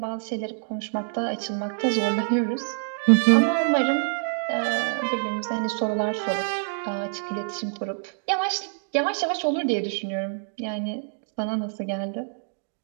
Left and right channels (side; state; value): left; silent; digital silence